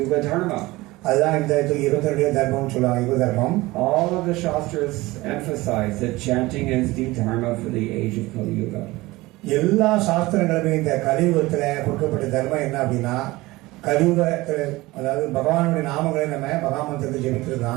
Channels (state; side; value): quieter; left; 20.2 dB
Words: Dharma. அதுதான் இந்த 22 தர்மம் சொல்லுவாங்க, யுக தர்மம். All of the Shastras emphasize that chanting is the dharma for the age of Kali Yuga. எல்லா சாஸ்திரங்களுமே இந்த கலியுகத்துல கொடுக்கப்பட்ட தர்மம் என்ன அப்படின்னா, கலியுகத்துல அதாவது பகவானுடைய நாமங்களை நம்ம மகாமந்திரத்தை ஜெபிக்கிறது